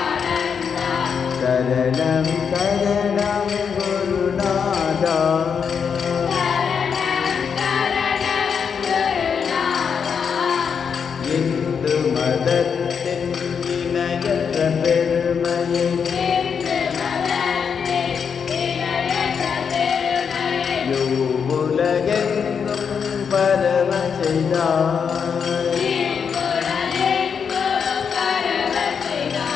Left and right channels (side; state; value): right; quieter; 6.6 dB